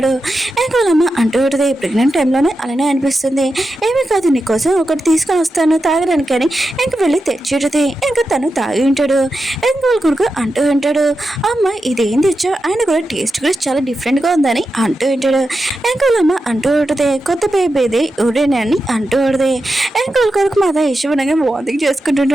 ఇంకా వాళ్ళమ్మ అంటూ ఉంటుంది ప్రెగ్నెంట్ టైంలోనే అలానే అనిపిస్తుంది, ఏమీ కాదు నీకోసం ఒకటి తీసుకొని వస్తాను తాగడానికి అని ఇంక వెళ్ళి తెచ్చుంటుంది. ఇంకా తను తాగి ఉంటాడు. ఇంకా వాళ్ళ కొడుకు అంటూ ఉంటాడు, అమ్మ ఇదేం తెచ్చావు, ఆయన కూడా టేస్ట్ కూడా చాలా డిఫరెంట్గా ఉందని అంటూ ఉంటాడు. ఇంకా వాళ్ళమ్మ అంటూ ఉంటుంది కొత్త బేబీది ఊరేనే అని అంటూ ఉంటుంది. ఇంకా వాళ్ళ కొడుకు మాత ఇష్టపడగా వాంతింగ్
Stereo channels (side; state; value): both; normal; correlation 0.89